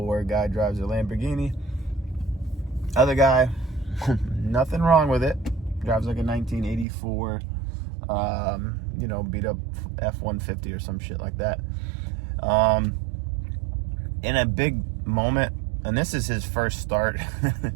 guy drives a Lamborghini. Other guy, nothing wrong with it, drives like a 1984, beat up F-150 or some shit like that. In a big moment, and this is his first start,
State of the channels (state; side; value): drops out; left; at 6.9 s